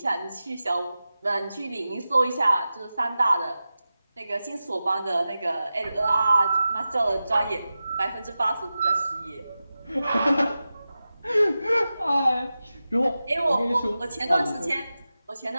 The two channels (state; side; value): inverted; both; correlation -0.94